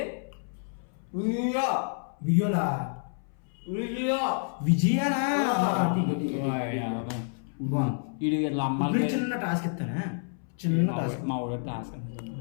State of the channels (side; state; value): right; silent; 59 dB below the other